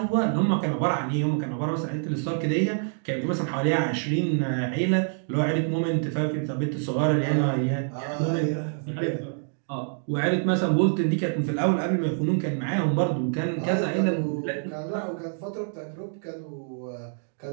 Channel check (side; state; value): left; silent; 61 dB below the other